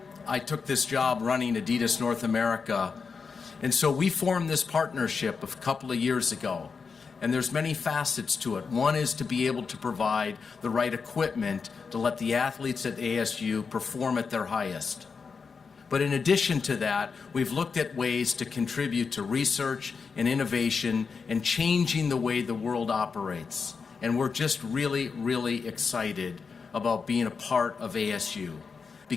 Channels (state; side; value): quieter; right; 5.3 dB